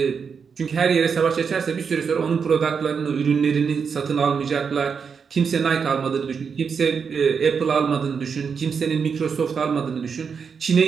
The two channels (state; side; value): quieter; left; 6.1 dB